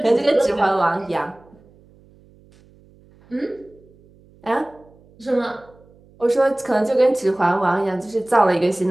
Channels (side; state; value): right; noise; hum, 28 dB below the sound